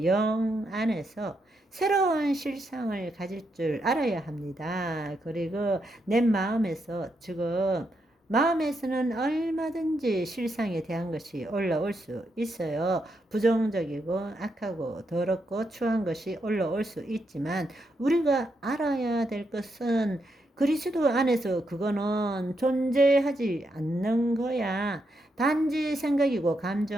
영 안에서 새로운 실상을 가질 줄 알아야 합니다. 그리고 내 마음에서 지금 마음에서는 얼마든지 실상에 대한 것이 올라올 수 있어요. 부정적이고 악하고 더럽고 추한 것이 올라올 수 있지만 우리가 알아야 될 것은 그리스도 안에서 그거는 존재하지 않는 거야. 단지 생각이고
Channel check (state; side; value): normal; both; correlation 0.81